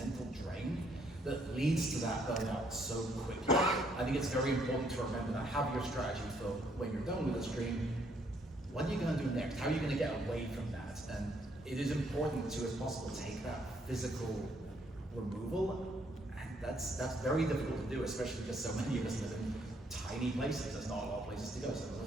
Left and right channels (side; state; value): both; normal; correlation 0.69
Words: drain that leads to that burnout so quickly. I think it's very important to remember that. Have your strategy for when you're done with the stream. What are you going to do next? How are you going to get away from that? And it is important to, as possible, take that physical removal. And that's very difficult to do, especially because so many of us live in tiny places. There's not a lot of places to go, so